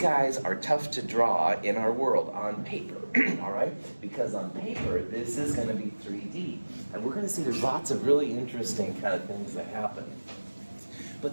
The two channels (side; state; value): both; inverted; correlation -1.00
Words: are tough to draw in our world on paper, all right? Because on paper, this is going to be 3D. And we're going to see there's lots of really interesting kind of things that happen.